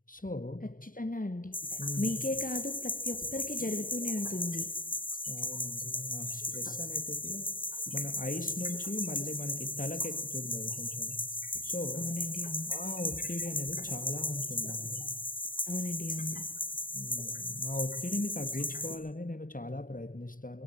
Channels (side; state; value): right; late; 0.40 ms